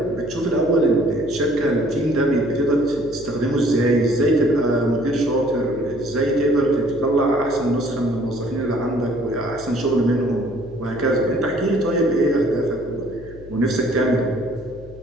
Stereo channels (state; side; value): noise; left; hum, 18 dB below the sound